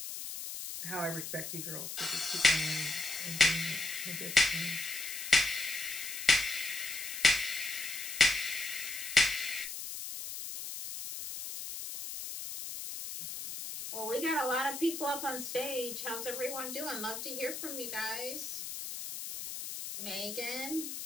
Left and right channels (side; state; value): left; noise; hiss, 7 dB below the sound